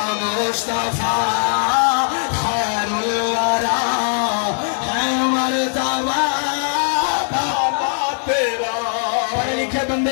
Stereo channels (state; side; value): silent; right; 61 dB below the other